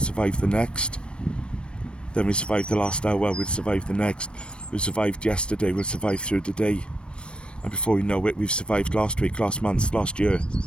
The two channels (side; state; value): right; late; 0.057 ms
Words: the next. Then we survived the last hour, we'll survive the next. We survived yesterday, we'll survive through the day. And before we know it, we've survived last week, last month, last year.